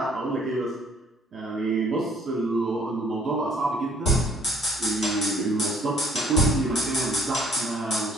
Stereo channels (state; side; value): normal; both; correlation 0.60